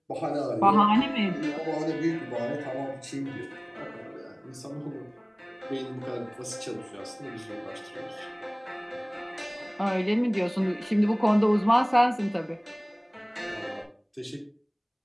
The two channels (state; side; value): identical; both; correlation 1.00